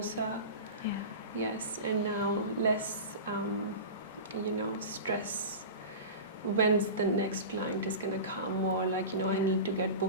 Yes, and now less, stress. When's the next client is going to come, or like, I need to get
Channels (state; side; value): inverted; both; correlation -0.30